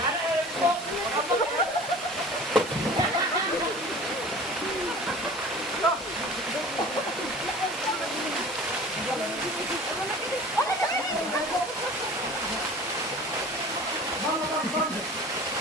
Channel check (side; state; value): both; normal; correlation 0.42